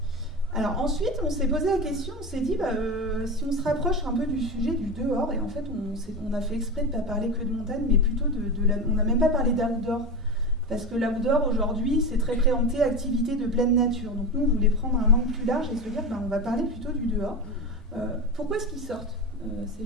Alors ensuite, on s'est posé la question, on s'est dit, si on se rapproche un peu du sujet du dehors, et en fait, on a fait exprès de ne pas parler que de montagne, mais plutôt on n'a même pas parlé d'outdoor. Parce que l'outdoor, aujourd'hui, c'est très préempté activité de pleine nature. Donc nous, on voulait prendre un angle plus large et se dire, on va parler plutôt du dehors. Pourquoi est-ce qu'ils sortent,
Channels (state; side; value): normal; both; correlation 0.22